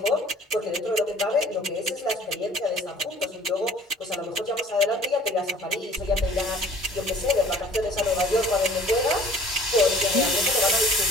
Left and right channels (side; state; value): both; normal; correlation 0.50